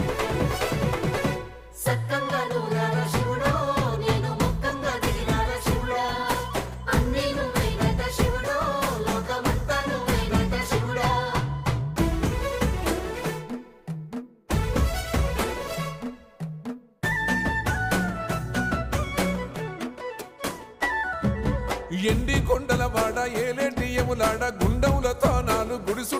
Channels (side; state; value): both; identical; correlation 1.00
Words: సక్కంగా నూరార శివుడో నేను మొక్కంగా దిగిరార శివుడా అన్నీ నువ్వేనట శివుడో లోకమంతా నువ్వేనట శివుడా ఎండి కొండల వాడ ఏలేటి యములాడ గుండములతో నాలు గుడి